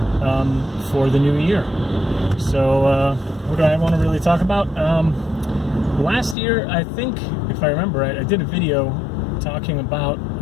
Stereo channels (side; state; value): right; drops out; at 6.4 s